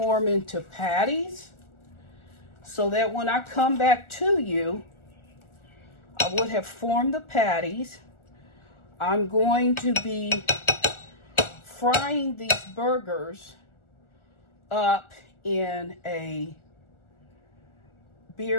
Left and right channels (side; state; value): right; late; 1.4 ms